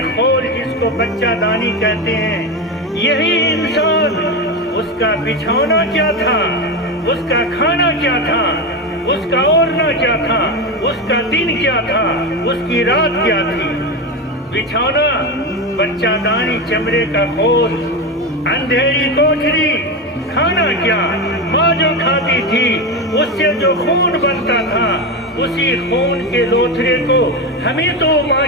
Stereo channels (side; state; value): both; normal; correlation 0.17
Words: خول جس کو بچہ دانی کہتے ہیں، یہی انسان، اس کا بچھونا کیا تھا، اس کا کھانا کیا تھا، اس کا اوڑھنا کیا تھا، اس کا دن کیا تھا، اس کی رات کیا تھی۔ بچھونا بچہ دانی چمڑے کا خول، اندھیری کوٹھری، کھانا کیا، ماں جو کھاتی تھی اس سے جو خون بنتا تھا، اسی خون کے لوتھڑے کو ہمیں تو ماں